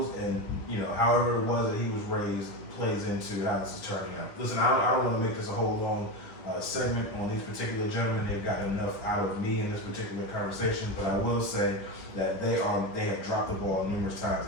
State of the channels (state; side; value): late; right; 10 ms